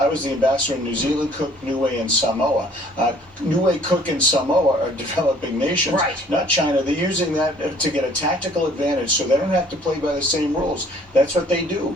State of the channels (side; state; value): both; normal; correlation 0.57